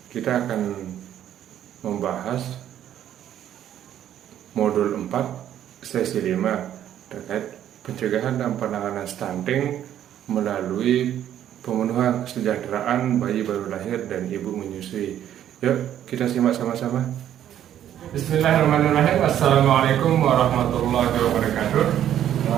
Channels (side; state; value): left; quieter; 10.9 dB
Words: kita akan membahas modul 4 sesi 5 terkait pencegahan dan penanganan stunting melalui pemenuhan kesejahteraan bayi baru lahir dan ibu menyusui. Yuk kita simak sama-sama. Bismillahirrahmanirrahim. Assalamualaikum warahmatullahi wabarakatuh.